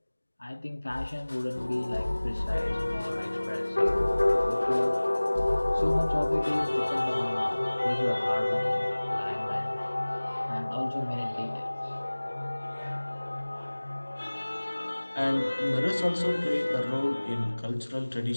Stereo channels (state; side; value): inverted; both; correlation -1.00